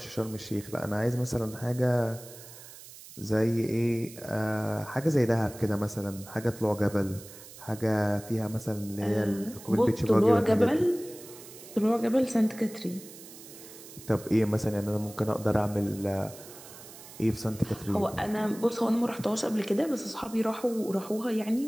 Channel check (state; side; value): noise; right; hiss, 17 dB below the sound